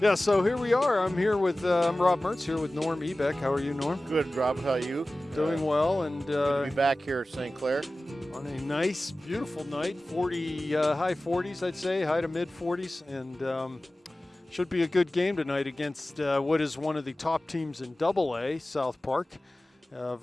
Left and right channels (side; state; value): both; normal; correlation 0.97